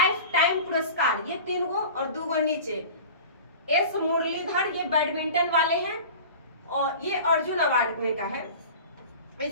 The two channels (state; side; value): inverted; both; correlation -0.37